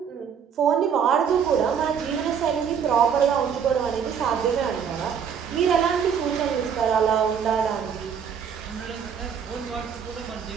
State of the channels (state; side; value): quieter; left; 7.4 dB